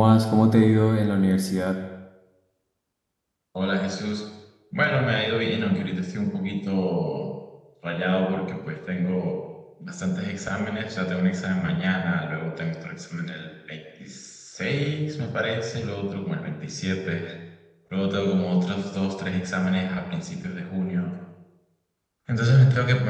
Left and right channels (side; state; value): both; identical; correlation 1.00